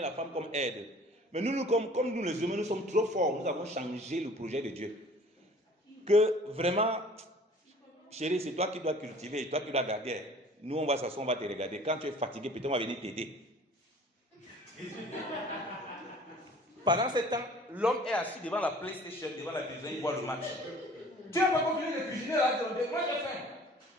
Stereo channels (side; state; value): both; normal; correlation 0.50